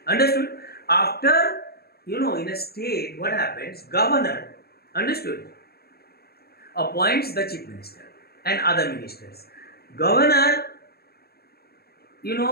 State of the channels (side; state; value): right; late; 0.46 ms